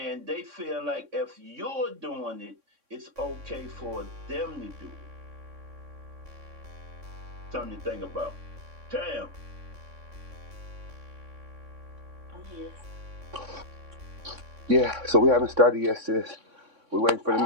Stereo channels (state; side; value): late; left; 3.6 ms